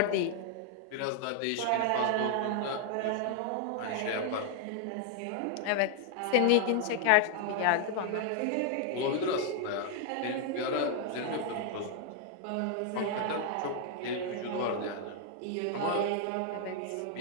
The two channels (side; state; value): both; different; correlation 0.00